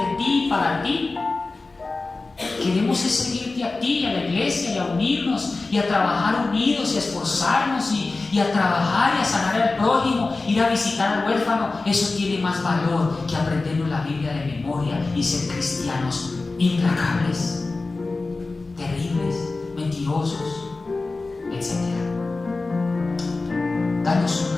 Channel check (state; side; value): quieter; right; 3.5 dB